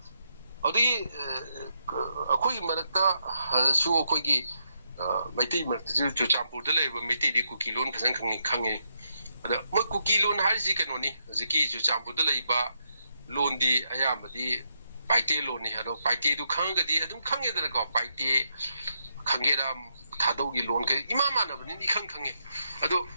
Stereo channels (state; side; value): inverted; both; correlation -0.80